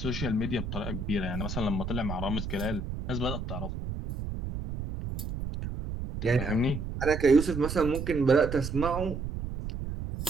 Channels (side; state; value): right; noise; rumble, 5 dB below the sound